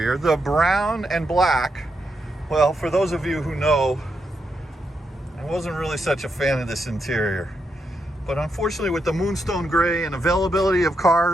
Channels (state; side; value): normal; both; correlation 0.82